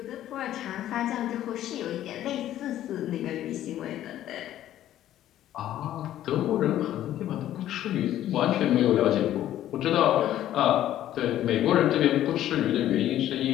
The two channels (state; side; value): quieter; right; 12.5 dB